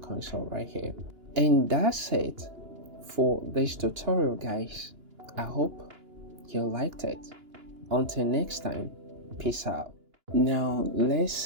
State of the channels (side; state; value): left; late; 2.9 ms